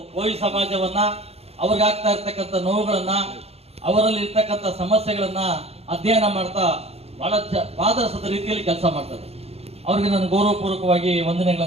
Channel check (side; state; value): left; late; 0.29 ms